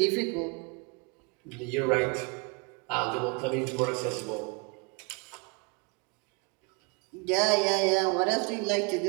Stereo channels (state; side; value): quieter; left; 30.2 dB